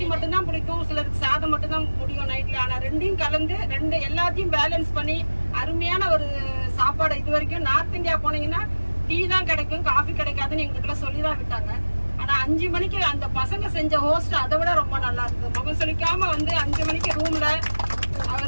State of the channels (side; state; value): both; inverted; correlation -1.00